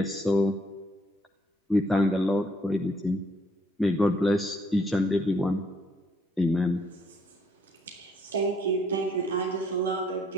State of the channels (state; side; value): normal; both; correlation 0.68